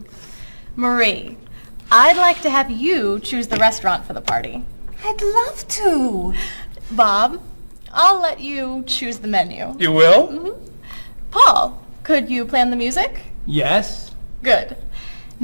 Marie, I'd like to have you choose the restaurant for the party. I'd love to. Bob, I'll let you choose the menu. You will? Mm-hmm. Paul, could you plan the music? Yes. Good.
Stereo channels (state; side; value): inverted; both; correlation -1.00